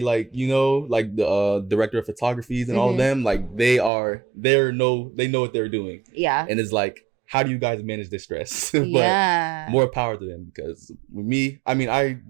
you know, like the director of photographies and all of them, like they know what they're doing. Yeah. And it's like, how do you guys manage this stress? But more power to them, because with me, I mean, I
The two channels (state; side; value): drops out; left; at 3.9 s